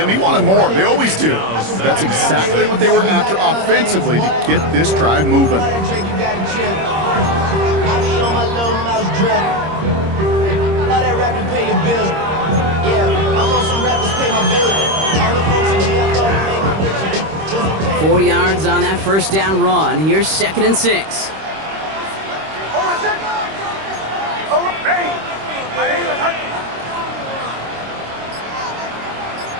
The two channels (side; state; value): left; late; 26 ms